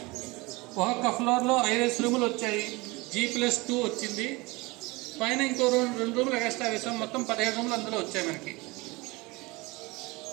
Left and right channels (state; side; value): quieter; left; 23.7 dB